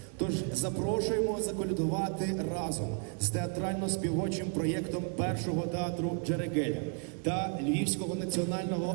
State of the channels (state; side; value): quieter; left; 39.5 dB